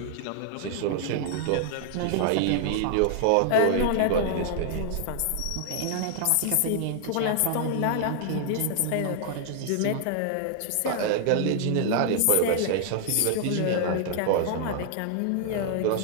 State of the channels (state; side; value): different; both; correlation 0.00